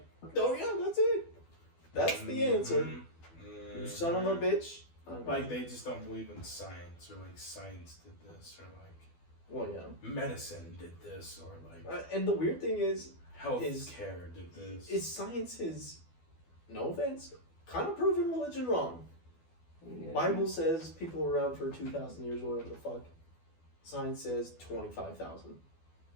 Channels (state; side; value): late; right; 12 ms